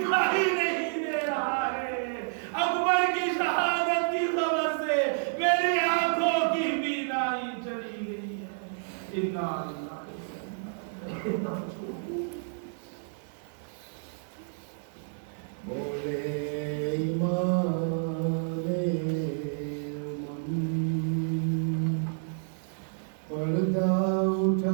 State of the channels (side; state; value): left; silent; 58 dB below the other